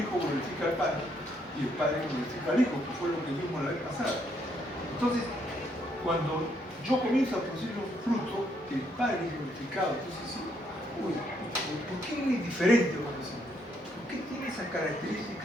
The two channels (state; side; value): normal; both; correlation 0.72